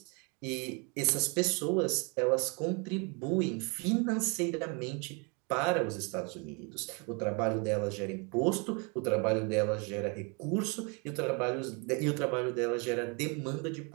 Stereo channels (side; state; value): left; quieter; 33.2 dB